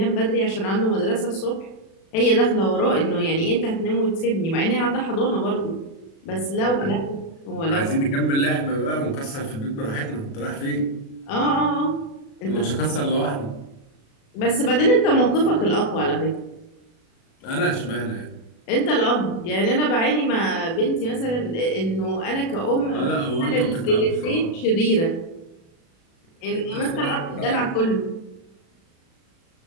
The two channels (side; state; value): right; late; 36 ms